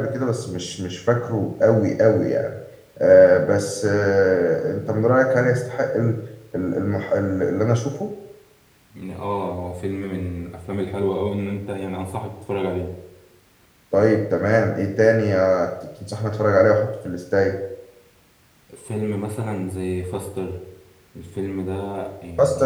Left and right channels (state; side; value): identical; both; correlation 1.00